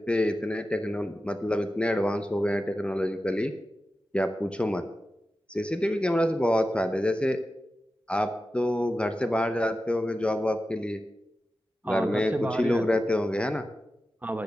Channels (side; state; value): both; normal; correlation 0.93